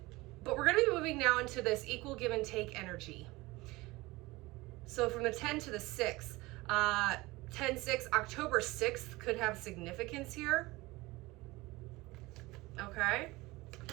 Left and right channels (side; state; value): left; quieter; 21.2 dB